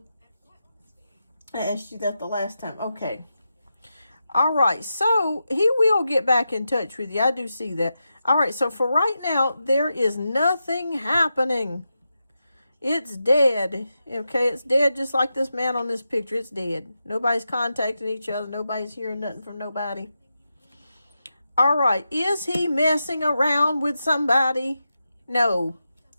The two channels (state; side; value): inverted; both; correlation -0.89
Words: I asked you that the last time. Okay. All right, so he will get back in touch with you. I do see that. All right, so for right now, there is nothing happening. It's dead. Okay, it's dead just like this man on this picture. It's dead. Nobody's contacting each other. Nobody's hearing nothing from nobody. All right, is he messing around with somebody? No.